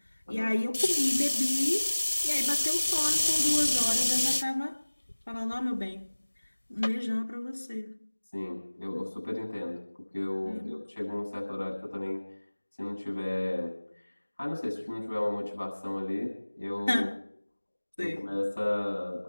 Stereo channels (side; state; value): both; inverted; correlation -1.00